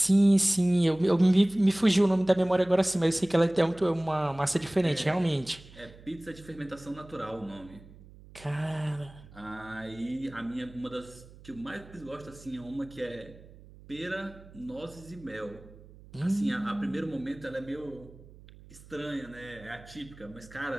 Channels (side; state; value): right; noise; hum, 21 dB below the sound